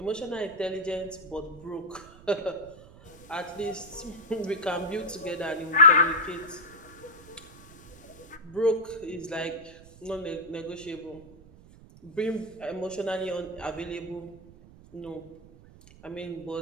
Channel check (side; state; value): right; noise; rumble, 21 dB below the sound